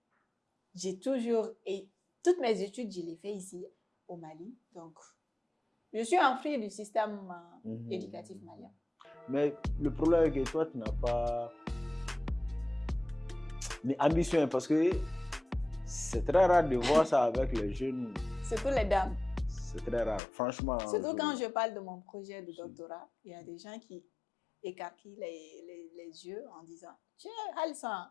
J'ai toujours... Et toutes mes études, je les fais ici au Mali. Donc, je suis un fruit du système éducatif malien. Mais le problème est que toi, tu n'as pas l'ambition parce que c'est très rare de voir ça avec les jeunes. Surtout les dames. C'est très rare, franchement. Surtout quand je parle de mon projet de doctorat, il y a des gens qui écarquillent les yeux en disant « Tiens, Alsa.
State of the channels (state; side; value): drops out; right; at 20.2 s